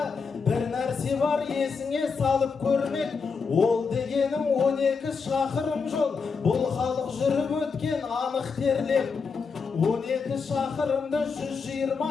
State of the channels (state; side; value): quieter; right; 5.2 dB